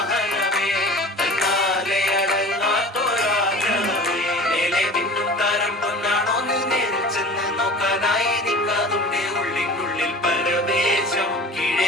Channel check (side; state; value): both; normal; correlation 0.39